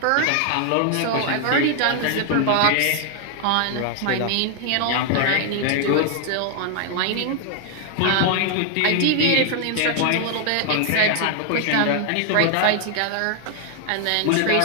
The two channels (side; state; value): both; different; correlation 0.00